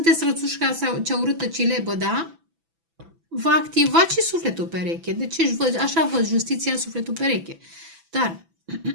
rățușca sau cea urâtă cilebă, da? Vă activați și sufletul pereche. Deci așa văd justiția, sufletul pereche. Dar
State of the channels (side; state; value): left; late; 6.0 ms